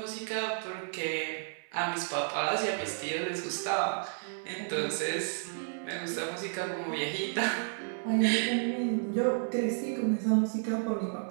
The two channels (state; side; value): silent; left; 56 dB below the other